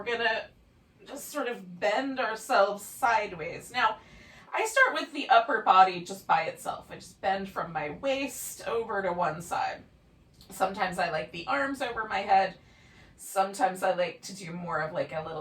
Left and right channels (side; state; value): both; identical; correlation 1.00